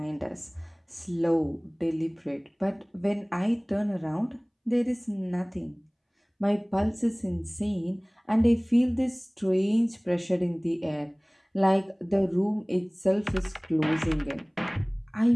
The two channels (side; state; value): both; identical; correlation 1.00